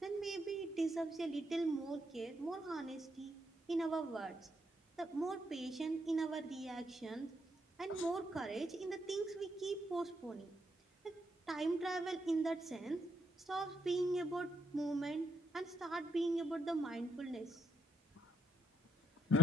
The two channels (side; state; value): both; normal; correlation 0.72